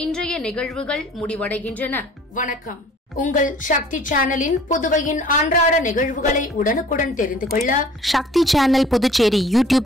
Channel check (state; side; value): normal; both; correlation 0.51